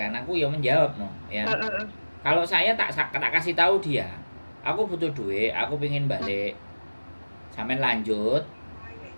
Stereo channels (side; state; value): both; inverted; correlation -1.00